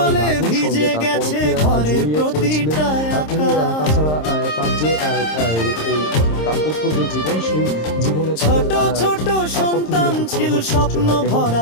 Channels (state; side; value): late; right; 26 ms